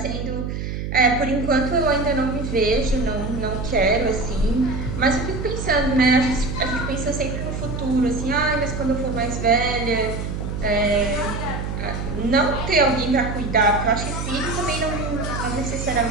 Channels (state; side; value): noise; right; hum, 4 dB below the sound